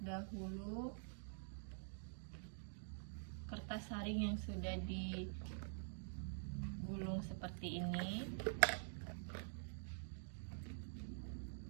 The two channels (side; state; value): left; silent; digital silence